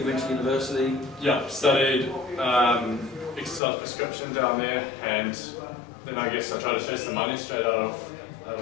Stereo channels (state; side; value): drops out; right; at 3.6 s